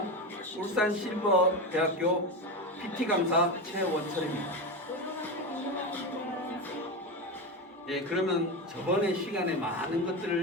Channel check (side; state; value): both; normal; correlation 0.17